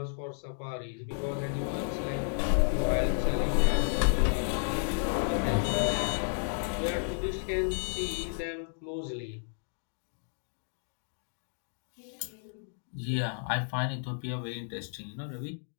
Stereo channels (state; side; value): silent; right; digital silence